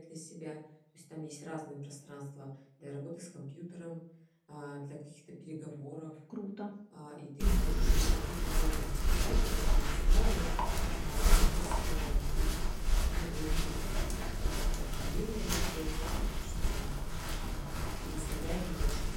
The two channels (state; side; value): identical; both; correlation 1.00